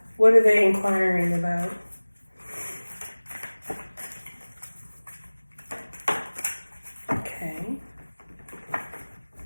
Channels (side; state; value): both; inverted; correlation -1.00